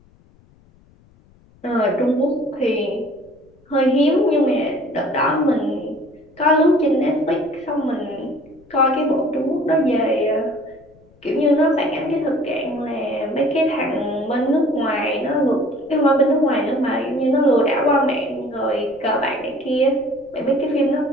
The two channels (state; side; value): noise; left; rumble, 30 dB below the sound